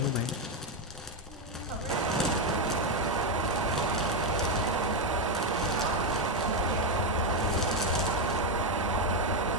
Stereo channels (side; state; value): both; normal; correlation 0.05